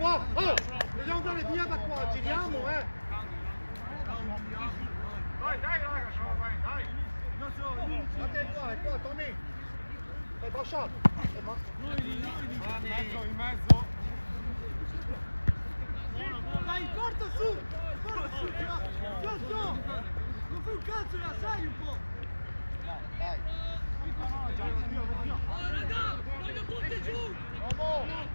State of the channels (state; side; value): inverted; both; correlation -1.00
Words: Oh! Dobbiamo andare via da qua! Giriamo, Dai, raga, dai! Guarda è qua, Tommy! È Bascia! In mezzo. Dai, corta su! Non fai un cazzo, la sai un po'! Dai. Voglio tutti giù!